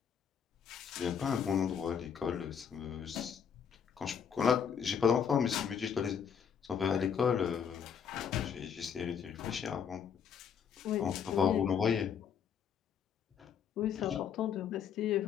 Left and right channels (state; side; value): quieter; right; 7.5 dB